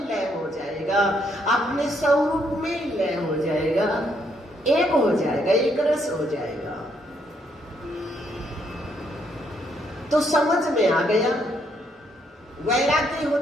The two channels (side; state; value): both; normal; correlation 0.73